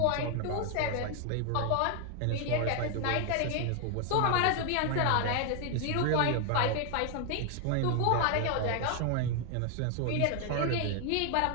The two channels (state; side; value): different; both; correlation 0.00